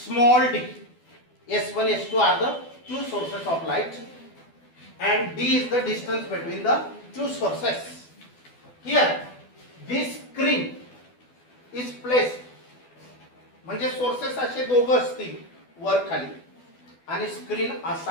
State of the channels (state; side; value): late; right; 12 ms